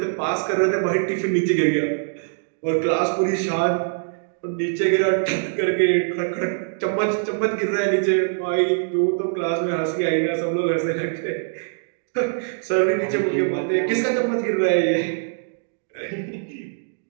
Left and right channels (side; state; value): left; silent; digital silence